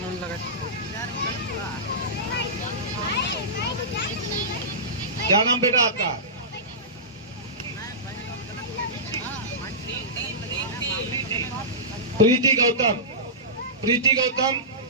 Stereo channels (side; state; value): both; normal; correlation -0.19